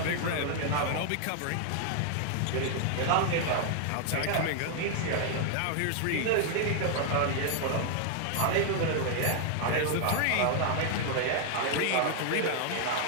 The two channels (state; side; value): different; both; correlation 0.00